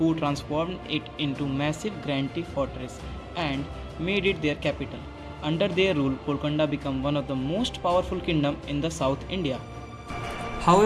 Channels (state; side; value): identical; both; correlation 1.00